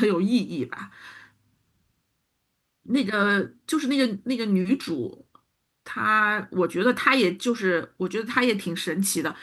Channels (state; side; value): identical; both; correlation 1.00